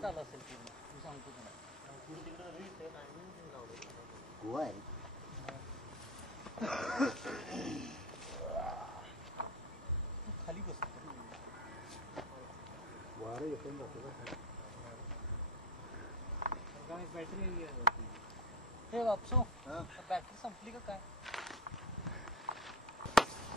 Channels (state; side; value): normal; both; correlation 0.23